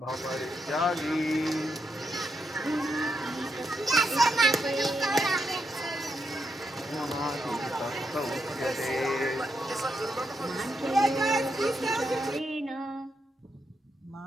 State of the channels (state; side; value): normal; both; correlation 0.82